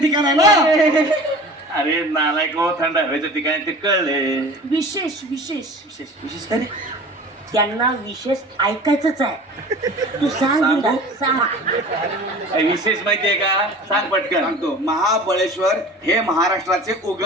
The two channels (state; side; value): normal; both; correlation 0.40